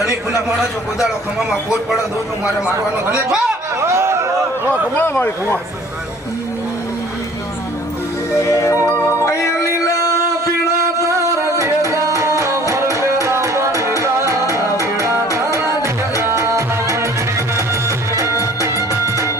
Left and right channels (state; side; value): normal; both; correlation 0.52